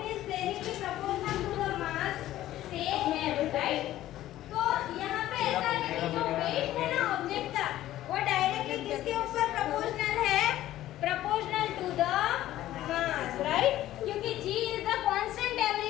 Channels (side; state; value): right; quieter; 14.1 dB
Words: is directly proportional to the mass say m, right? तो यहाँ पे ऐसा है कि जो weight है ना ऑब्जेक्ट का वो डायरेक्टली किसके ऊपर प्रोपोर्शनल है? Proportional to the mass, right? क्योंकि g is the constant